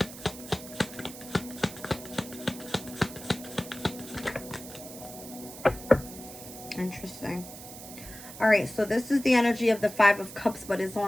Interesting. All right, so this is the energy of the 5 of Cups, but it's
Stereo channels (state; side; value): noise; right; hiss, 14 dB below the sound